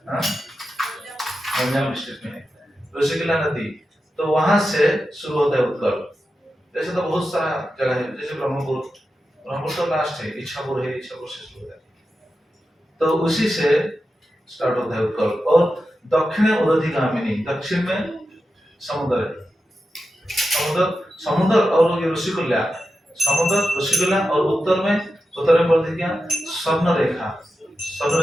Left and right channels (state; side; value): normal; both; correlation 0.90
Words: गंजाम डिस्ट्रिक्ट में है ऋषिकुल्या नदी। तो वहां से शुरू होता है उत्कल। जैसे तो बहुत सारा जगह है, जैसे ब्रह्मपुर, ब्रह्मपुर तो लास्ट है, इच्छापुर है, इच्छापुर से शुरू होता है, तो उसी से स्टार्ट होता है उत्कल। और दक्षिण उदधिगामिनी, दक्षिण में समुद्र है, समुद्र और ये ऋषिकुल्या, समुद्र ऋषिकुल्या, और उत्तर में बोलते क्या, स्वर्ण रेखा। स्वर्ण